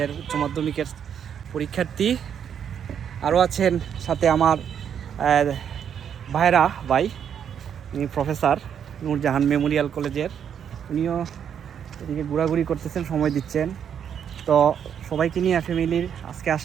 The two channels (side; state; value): left; quieter; 8.4 dB